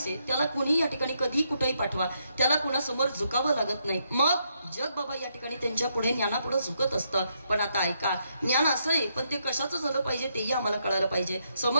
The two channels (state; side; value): inverted; both; correlation -0.78